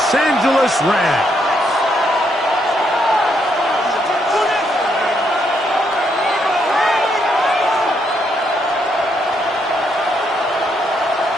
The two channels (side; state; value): both; normal; correlation 0.75